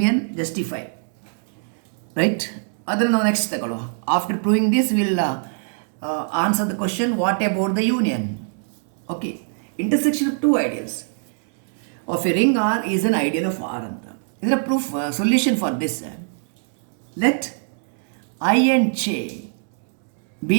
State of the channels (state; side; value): silent; left; digital silence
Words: justify, right? ಅದನ್ನು ನಾವು next ತಗೊಳ್ಳುವ. After proving this will answer the question, what about the union? Okay, intersection of two ideals of a ring R is an ideal of R anta. Is a proof solution for this. Let I and J